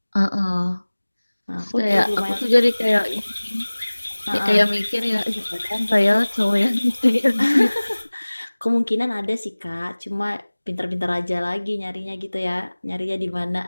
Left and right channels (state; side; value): inverted; both; correlation -1.00